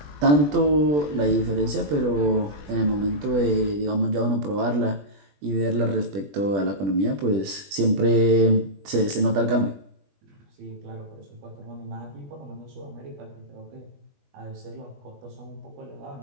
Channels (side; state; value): left; late; 20 ms